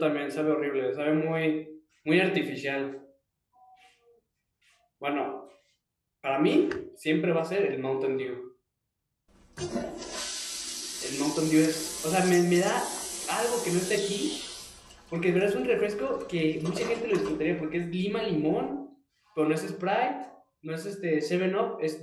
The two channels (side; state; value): both; identical; correlation 1.00